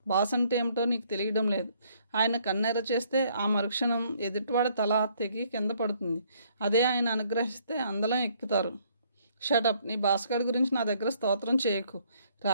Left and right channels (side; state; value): both; inverted; correlation -0.65